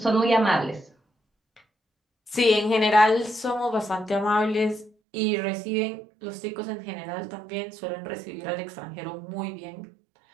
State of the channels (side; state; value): left; drops out; at 4.9 s